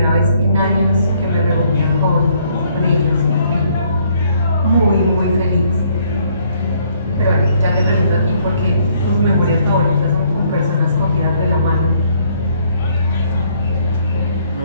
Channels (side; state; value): both; inverted; correlation -0.66